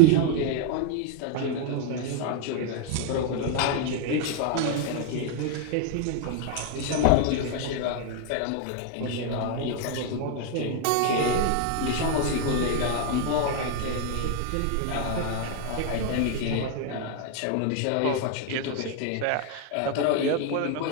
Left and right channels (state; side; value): different; both; correlation 0.00